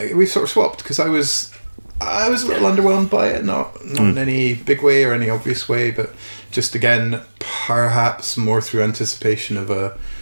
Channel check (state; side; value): inverted; both; correlation -1.00